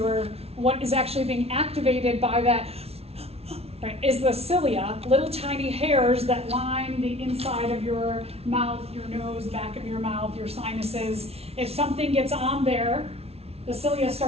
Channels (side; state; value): left; late; 0.30 ms